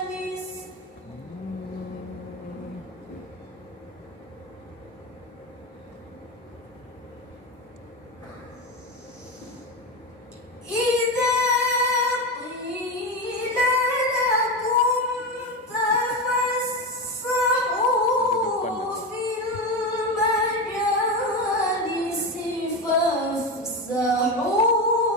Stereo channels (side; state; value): both; normal; correlation 0.17